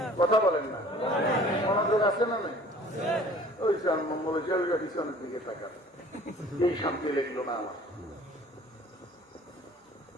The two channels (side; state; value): both; normal; correlation 0.50